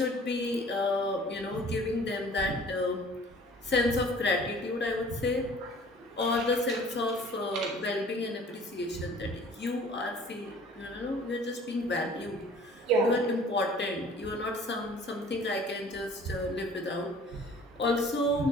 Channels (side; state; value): both; normal; correlation 0.50